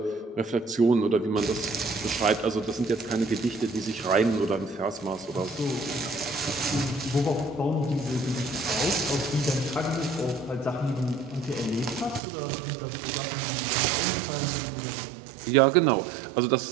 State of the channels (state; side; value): drops out; left; at 12.2 s